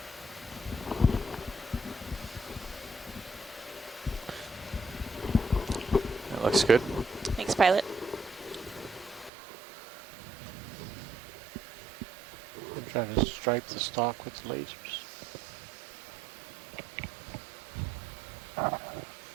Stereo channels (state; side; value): drops out; left; at 9.3 s